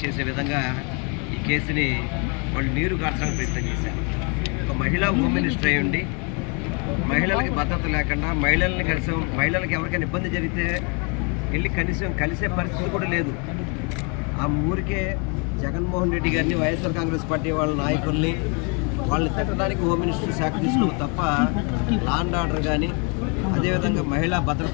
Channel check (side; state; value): right; quieter; 34.7 dB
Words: చేసే విధంగా ఈ కేసుని వాళ్ళు నీరు కార్చడానికి ప్రయత్నం చేశారు. ఒక మహిళా హోమ్ మినిస్టర్ అయి ఉండి మహిళలకి భద్రత లేకుండా మహిళలకి ఎవరికైనా ఇబ్బంది జరిగితే వెళ్ళి కనీసం కలిసే పరిస్థితి కూడా లేదు. ఆ ఊరికే జగన్మోహన్ రెడ్డి గారిని వైఎస్ఆర్ కాంగ్రెస్ పార్టీ వాళ్ళ నాయకుల్ని వాళ్ళని తిట్టడానికి హోమ్ మినిస్టర్ శాఖ తీసుకున్నాం తప్ప లా అండ్ ఆర్డర్ కానీ అదేవిధంగా మహిళా